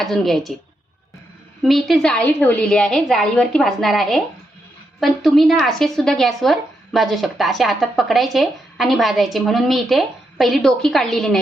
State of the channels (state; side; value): normal; both; correlation 0.82